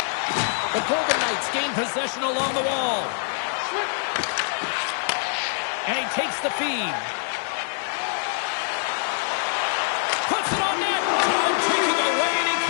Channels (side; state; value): right; silent; digital silence